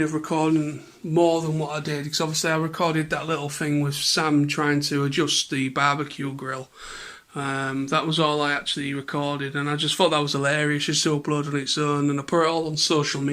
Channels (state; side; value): identical; both; correlation 1.00